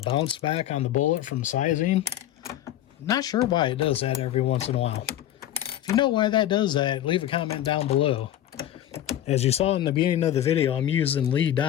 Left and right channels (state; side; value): quieter; right; 12.2 dB